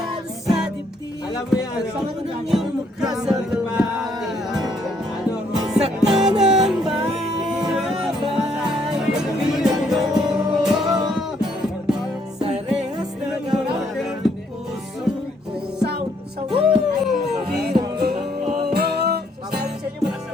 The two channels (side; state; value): both; normal; correlation 0.69